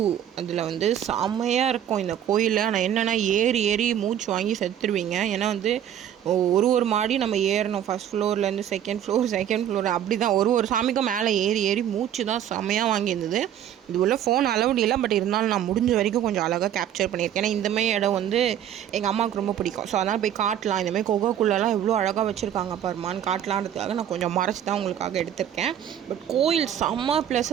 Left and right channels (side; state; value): left; quieter; 10.3 dB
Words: அதில் வந்து செம்மையாக இருக்கும் இந்த கோயில். ஆனால் என்னென்னா ஏறி ஏறி மூச்சு வாங்கி செத்துருவீங்க. ஏன்னா வந்து ஒரு மாடி நம்ம ஏறணும், ஃபஸ்ட் ஃப்ளோர்லேருந்து செகண்ட் ஃப்ளோர் அப்படி தான். ஒரு சாமிக்கும் மேலே ஏறி ஏறி மூச்சு தான் செம்மையாக வாங்கியிருந்தது. இது உள்ள ஃபோன் அலவுட் இல்லை, பட் இருந்தாலும் நான் முடிஞ்ச வரைக்கும் கொஞ்சம் அழகாக கேப்சர் பண்ணியிருக்கேன். ஏன்னா இந்தமாதிரி இடம் வந்து எங்கள் அம்மாவுக்கு ரொம்ப பிடிக்கும். ஸோ அதனால் போய் காட்டலாம், இந்தமாதிரி கொகைக்குள்ளெல்லாம் எவ்வளோ அழகாக வச்சுருக்காங்க பாருமான்னு காட்டலான்றதுக்காக நான் கொஞ்சம் மறைச்சி தான் உங்களுக்காக எடுத்திருக்கேன். பட் கோயில் செம்ம